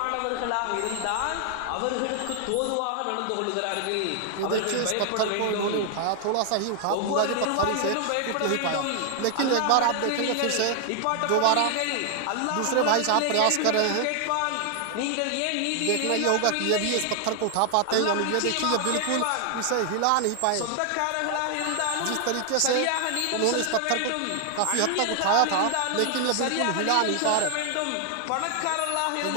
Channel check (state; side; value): different; both; correlation 0.00